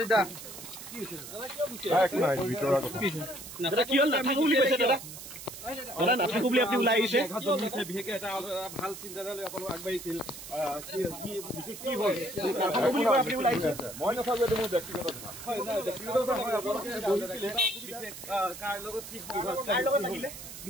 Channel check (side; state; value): right; noise; hiss, 12 dB below the sound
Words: কি হইছে দাদা কি নাই ভিতৰৰ কথা দাদা কি হল নাথাকো বুলি কৈছে দাদা দাদা নাথাকো বুলি আপুনি ওলাই আহিছে বিশেষকৈ এটা ভাল চিন্তাধাৰালৈ আপোনালোক আগবাঢ়িছিল কি হ'ল নাথাকো বুলি কৈ আপুনি ওলাই আহিছে মই নাথাকো এইটো মোৰ ব্যক্তিগত কথা হয় নাই ব্যক্তিগত কথা হয় আপোনালোকে বহিছিলে কাৰ লগত কি হ'ল কাৰ লগত থাকিলে